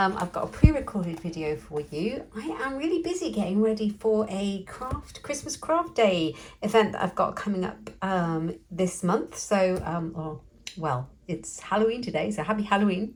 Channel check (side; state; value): both; identical; correlation 1.00